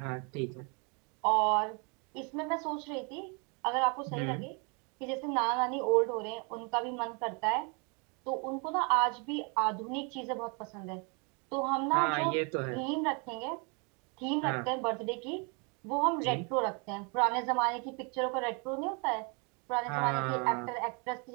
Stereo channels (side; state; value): left; quieter; 33.9 dB